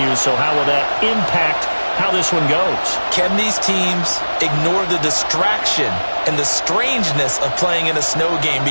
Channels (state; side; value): inverted; both; correlation -1.00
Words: So how will that impact how this one goes? Can these teams ignore the distraction and the strangeness of playing in a snow game?